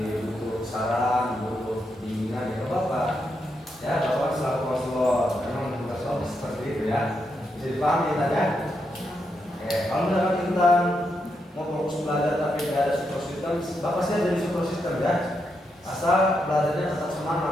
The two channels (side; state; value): both; normal; correlation 0.82